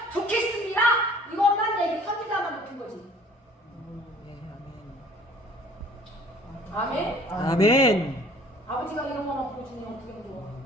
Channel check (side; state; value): both; normal; correlation 0.52